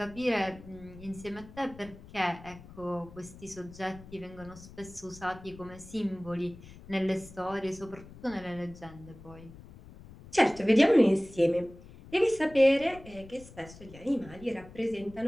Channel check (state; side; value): noise; left; rumble, 18 dB below the sound